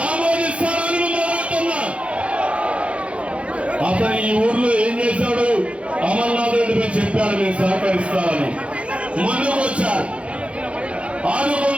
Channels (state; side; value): late; left; 0.061 ms